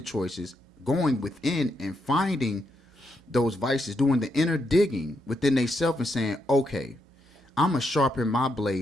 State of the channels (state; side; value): normal; both; correlation 0.80